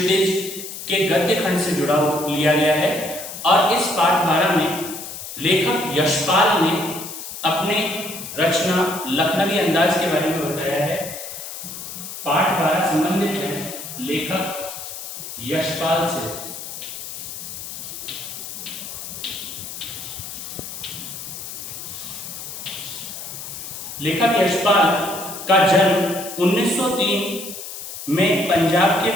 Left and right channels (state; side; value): noise; left; hiss, 9 dB below the sound